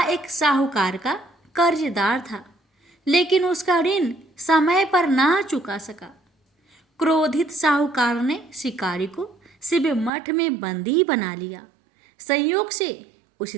एक साहूकार का कर्जदार था, लेकिन उसका ऋण समय पर ना चुका सका। क्रोधित साहूकार ने शिकारी को शिव मठ में बंदी बना लिया। संयोग से उस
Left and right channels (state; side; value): drops out; left; at 10.1 s